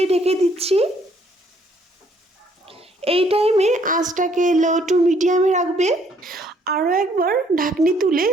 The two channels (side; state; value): both; normal; correlation 0.65